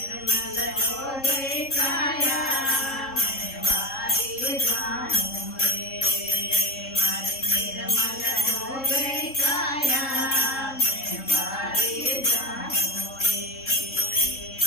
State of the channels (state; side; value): late; right; 3.7 ms